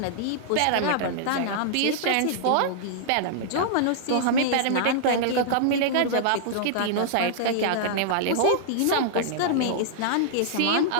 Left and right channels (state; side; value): different; both; correlation -0.01